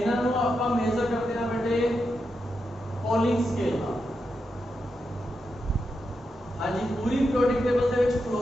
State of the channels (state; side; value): normal; both; correlation 0.86